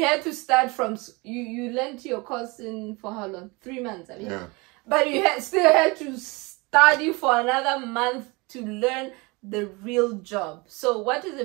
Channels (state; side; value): quieter; left; 26.1 dB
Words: had to start from, you learned your course in, for how long? 3 months, I mean. Yeah. But you still had to study for another month to learn the real job. So what is